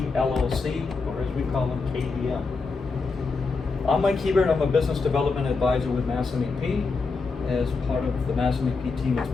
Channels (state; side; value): quieter; right; 4.3 dB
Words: LLC, or as we call them, KDM. I'm Mike Hebert. I'm a business development advisor with MassMEP. As part of the MassMEP team, it's